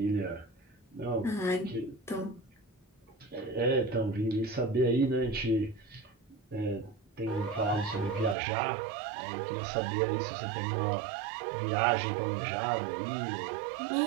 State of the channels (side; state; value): left; drops out; at 8.3 s